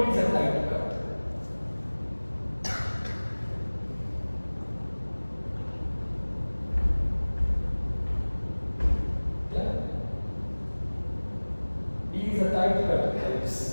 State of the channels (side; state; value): both; inverted; correlation -1.00